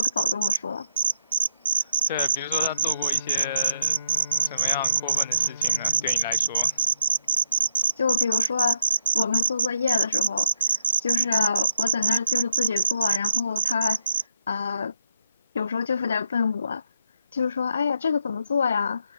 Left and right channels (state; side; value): inverted; both; correlation -0.73